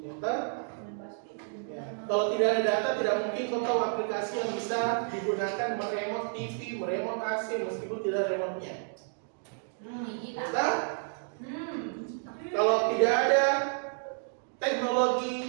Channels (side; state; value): left; silent; 57 dB below the other